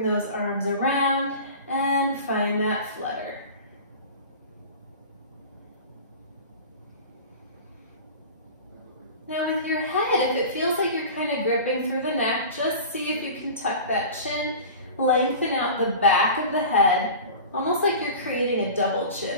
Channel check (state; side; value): inverted; both; correlation -0.36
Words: those arms around, and find that flutter. Now with your head, if it feels like you're kind of gripping through the neck, just see if you can tuck that chin, lengthen out the back of the head, almost like you're creating a double